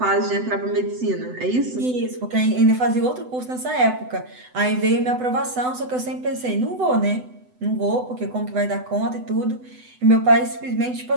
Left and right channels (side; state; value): left; late; 8.0 ms